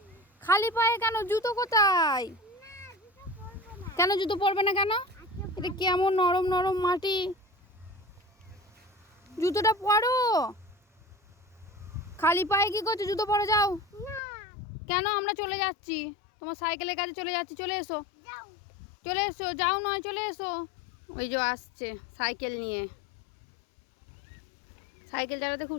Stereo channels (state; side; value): drops out; right; at 14.2 s